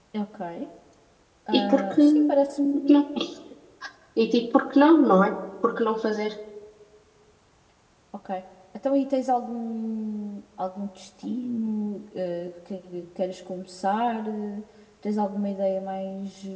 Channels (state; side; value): identical; both; correlation 1.00